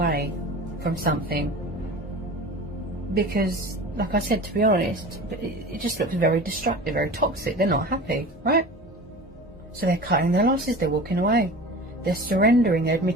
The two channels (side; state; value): both; normal; correlation 0.36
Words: from something. Because, like I said, to be honest, it just looks very destructive, very toxic. They're not happy, right? So they're cutting their losses, they're walking away. They're surrendering, they're